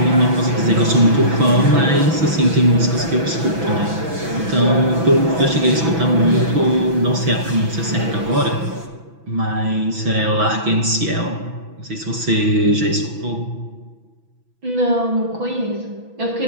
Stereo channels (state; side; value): late; left; 6.1 ms